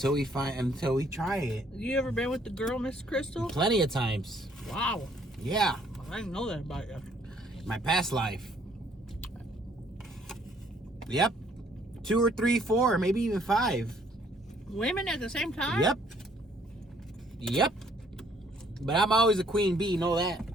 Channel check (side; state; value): both; normal; correlation 0.64